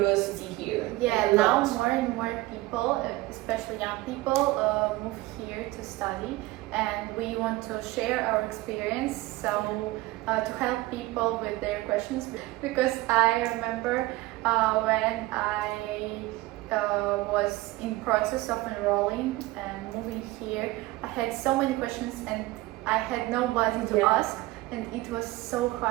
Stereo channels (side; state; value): left; quieter; 19.2 dB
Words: here. Yeah, now more and more people, especially young people, move here to study, and we want to share our experience, so to help people with their questions, because I remember when I was in process of enrolling and moving here, I had so many questions and I had nobody to ask, and it was so